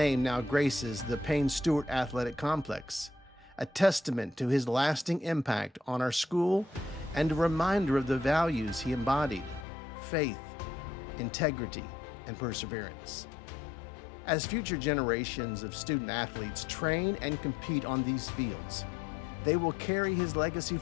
now graces the Payne Stewart Athletic Complex, a testament to his lasting impact on our school and a reminder of the values he embodied: faith, integrity, and perseverance. As future generations of student athletes train and compete on these fields, they will carry his legacy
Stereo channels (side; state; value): right; drops out; at 9.7 s